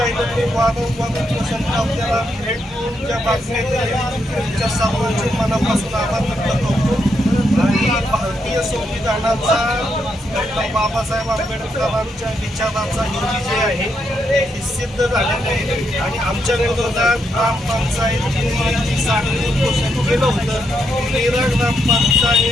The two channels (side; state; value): both; normal; correlation 0.79